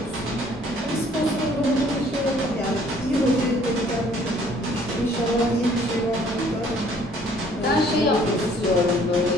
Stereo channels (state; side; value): normal; both; correlation 0.59